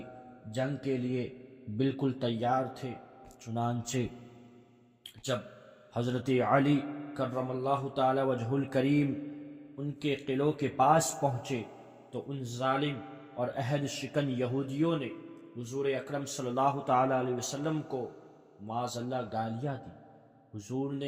جنگ کے لیے بالکل تیار تھے۔ چنانچہ جب حضرت علی کرم اللہ تعالی وجہ الکریم ان کے قلعوں کے پاس پہنچے تو ان ظالم اور عہد شکن یہودیوں نے حضور اکرم صلی اللہ تعالی علیہ وسلم کو معاذ اللہ گالیاں دی۔ حضور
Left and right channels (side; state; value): both; identical; correlation 1.00